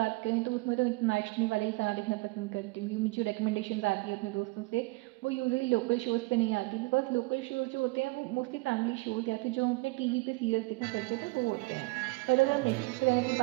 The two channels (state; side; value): quieter; left; 24.3 dB